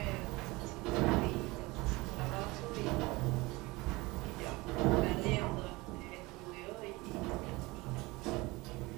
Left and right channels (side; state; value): left; quieter; 22.6 dB